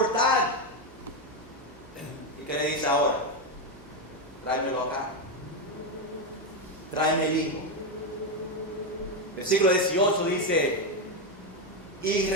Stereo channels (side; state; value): both; normal; correlation 0.08